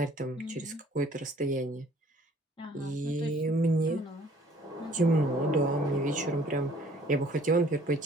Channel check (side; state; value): both; normal; correlation 0.56